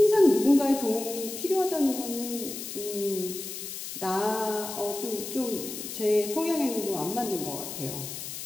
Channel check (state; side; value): noise; left; hiss, 8 dB below the sound